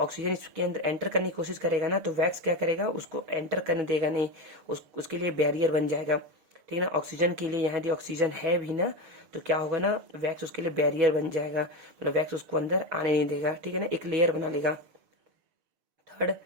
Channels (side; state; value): left; late; 6.7 ms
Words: इसके अंदर एंटर करने की कोशिश करेगा ना, तो वैक्स क्या करेगा, उसको एंटर करने देगा नहीं, उसके लिए बैरियर बन जाएगा, ठीक है ना। ऑक्सीजन के लिए यहाँ यदि ऑक्सीजन है भी ना, तो क्या होगा ना, वैक्स उसके लिए बैरियर बन जाएगा, मतलब वैक्स उसको अंदर आने नहीं देगा, ठीक है ना, एक लेयर बना लेगा। थर्ड,